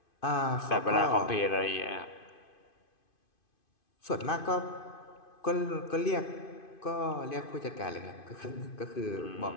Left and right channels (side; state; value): right; late; 2.5 ms